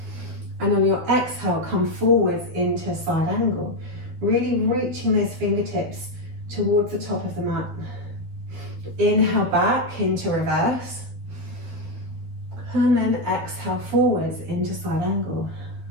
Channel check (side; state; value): left; late; 12 ms